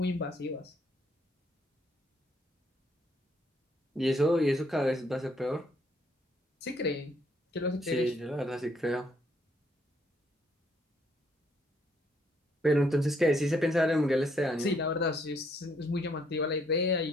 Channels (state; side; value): normal; both; correlation 0.69